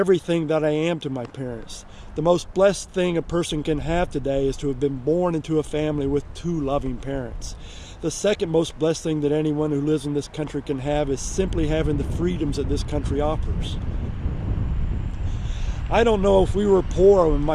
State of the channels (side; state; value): both; identical; correlation 1.00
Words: that I am to my parents. The most blessed thing a person can have today is to have been born into a family with two loving parents. The second most blessed thing that anyone who lives in this country can have is simply having the freedoms that this country offers. I don't know if we were poor when